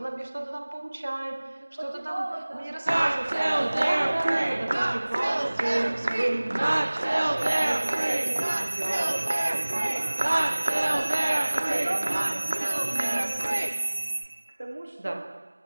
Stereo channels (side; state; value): both; inverted; correlation -1.00